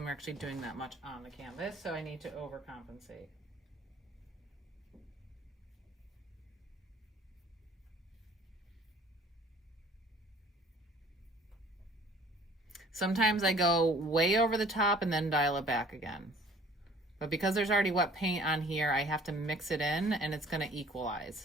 actually doing that much on the canvas, so I need to overcompensate. Sometimes I go way over the top and then dial it back again. But because there's already wet paint on here, I have to mix it in, and it's going to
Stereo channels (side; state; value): both; normal; correlation 0.53